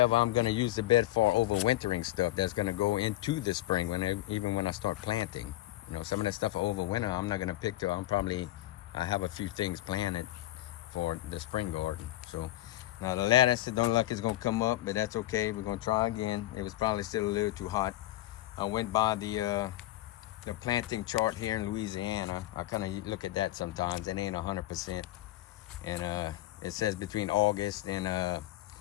I'm gonna use the bed for overwintering stuff that's gonna go into the spring even when I start planting. You know, some of that stuff for overwinter I'm not gonna pick till I have a few things planted for the spring garden. So now the lettuce, it don't look like it's gonna come up, but that's okay. We're gonna try again. It was probably still a little too hot. I went by the planting chart here in Louisiana. I kind of look at that sometimes. It ain't 100%. And it says between August and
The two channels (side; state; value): right; quieter; 16.0 dB